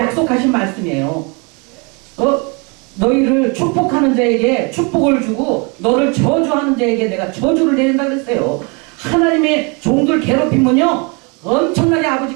말씀이에요. 너희를 축복하는 자에게 축복을 주고 너를 저주하는 자에게 내가 저주를 내린다 그랬어요. 하나님의 종들 괴롭히면요. 엄청나게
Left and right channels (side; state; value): left; quieter; 31.8 dB